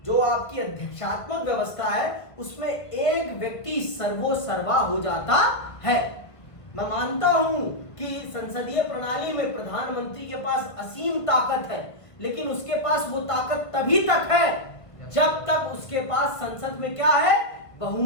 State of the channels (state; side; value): late; right; 1.5 ms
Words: जो आपकी अध्यक्षात्मक व्यवस्था है उसमें एक व्यक्ति सर्वोसर्वा हो जाता है। मैं मानता हूं कि संसदीय प्रणाली में प्रधानमंत्री के पास असीम ताकत है, लेकिन उसके पास वो ताकत तभी तक है जब तक उसके पास संसद में क्या है,